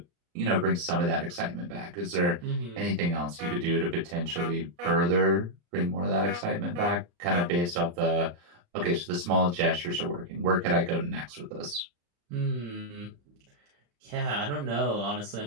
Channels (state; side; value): late; left; 34 ms